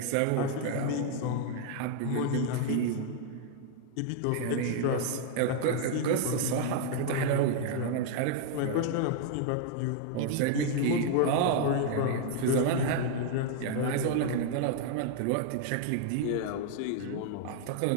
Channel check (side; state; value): both; different; correlation 0.00